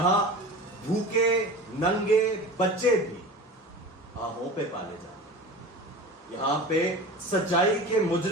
بھوکے ننگے بچے بھی آہوں پہ پالے جاتے ہیں، یہاں پہ سچائی کے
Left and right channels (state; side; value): normal; both; correlation 0.34